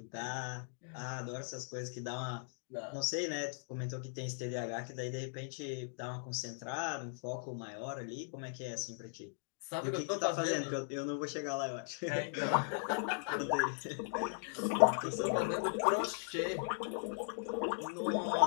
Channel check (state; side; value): silent; right; digital silence